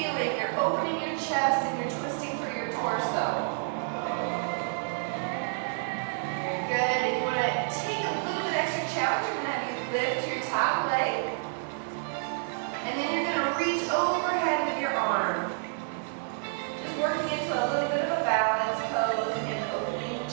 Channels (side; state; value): left; silent; 58 dB below the other